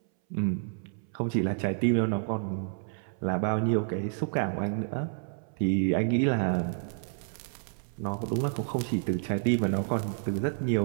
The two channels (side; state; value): left; silent; 58 dB below the other